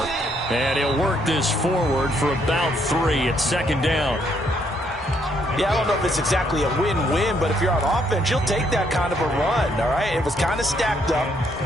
And he'll work this forward for about 3 at second down. Yeah, I don't know if it's exactly a win-win, but if you're on offense, you'll take that kind of a run, all right? It was kind of stacked up,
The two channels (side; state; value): both; normal; correlation 0.71